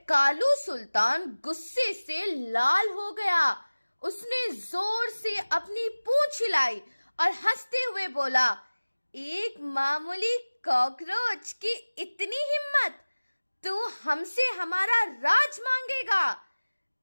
कालू सुल्तान गुस्से से लाल हो गया। उसने जोर से अपनी पूंछ हिलाई और हंसते हुए बोला, एक मामूली कॉकरोच की इतनी हिम्मत, तू हमसे हमारा राज मांगेगा?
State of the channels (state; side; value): inverted; both; correlation -1.00